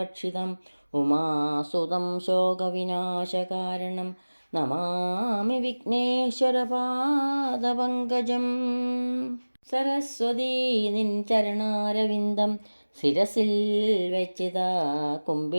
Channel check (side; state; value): both; inverted; correlation -1.00